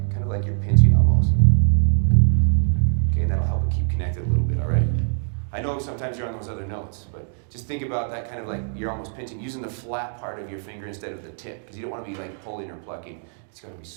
kind of like you're pinching almost. Okay, that'll help it keep connected a little bit. All right. I know sometimes you're on those other notes, but just think about that kind of like you're almost pinching, using the flat part of your finger instead of the tip, because you don't want to be like pulling or plucking. It's got to be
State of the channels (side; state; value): left; silent; digital silence